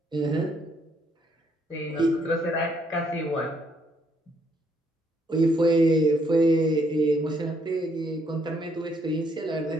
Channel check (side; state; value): both; normal; correlation 0.71